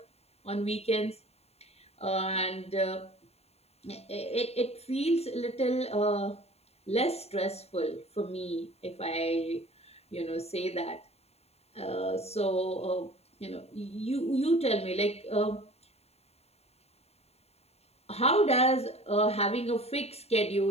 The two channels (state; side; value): late; right; 0.30 ms